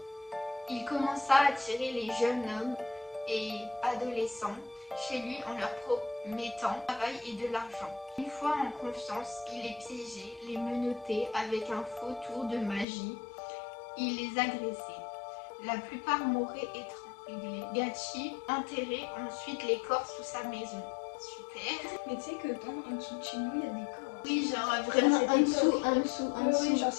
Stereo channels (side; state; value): right; drops out; at 12.9 s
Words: il commença à attirer les jeunes hommes et adolescents chez lui en leur promettant travail et de l'argent. Une fois en confiance, il les piégeait, les menottait avec un faux tour de magie. Il les agressait. La plupart mouraient étranglés. Gachi enterrait ensuite les corps sous sa maison. Super. Mais tu sais que en dessous de chez nous, il y a des corps. Oui, genre vraiment en dessous. Oui, genre